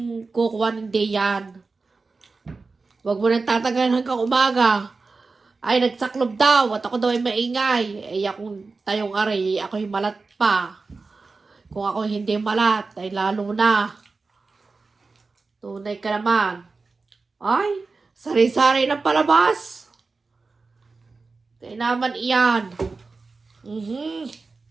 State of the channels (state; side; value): quieter; left; 4.0 dB